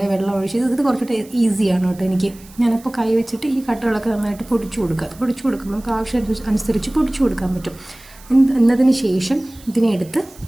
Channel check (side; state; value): right; noise; hiss, 23 dB below the sound